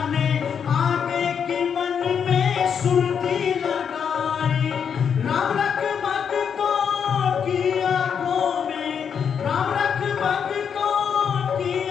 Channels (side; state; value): right; quieter; 7.3 dB